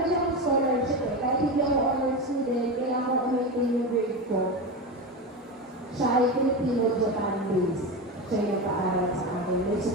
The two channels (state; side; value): normal; both; correlation 0.20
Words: siyang scholarship eh. Kahit hindi ako honor student, kaya ako umitin yung grade ko. Siya ay Filipino-Japan based. Siya yung paaral sa akin. May